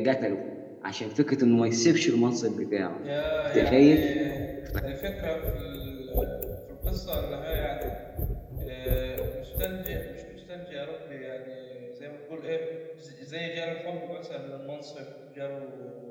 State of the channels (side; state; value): both; identical; correlation 1.00